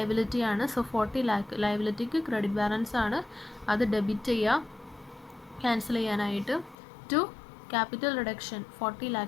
ആണ്. സോ 40 lakh ലയബിലിറ്റിക്ക് ക്രെഡിറ്റ് ബാലൻസ് ആണ്. അത് ഡെബിറ്റ് ചെയ്യുക ക്യാൻസൽ ചെയ്യാനായിട്ട്. ടു ക്യാപിറ്റൽ റിഡക്ഷൻ 40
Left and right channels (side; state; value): right; drops out; at 6.8 s